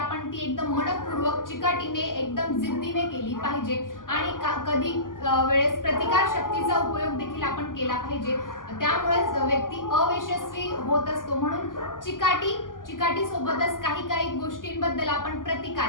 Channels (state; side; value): late; right; 0.89 ms